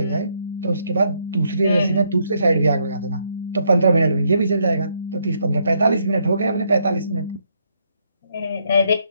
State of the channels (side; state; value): both; inverted; correlation -0.74